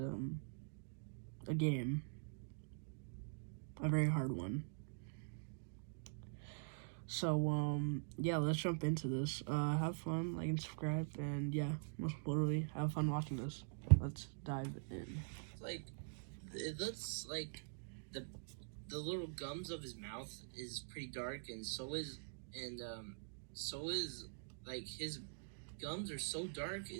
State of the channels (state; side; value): silent; left; digital silence